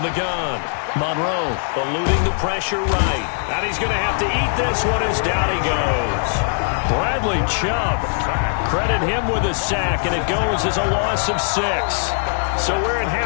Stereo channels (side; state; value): right; silent; 66 dB below the other